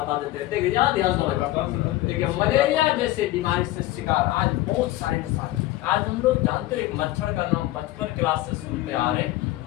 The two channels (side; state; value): right; quieter; 16.6 dB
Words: देते हैं। देखिए याद देखिए मलेरिया जैसे बीमारी से शिकार आज बहुत सारे इंसान। आज हम लोग जानते हैं एक मच्छर का नाम बचपन क्लास से सुनते आ रहे,